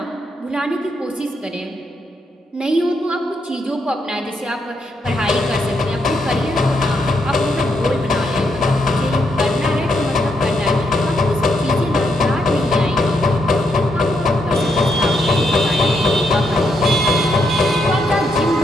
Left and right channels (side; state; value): both; normal; correlation 0.78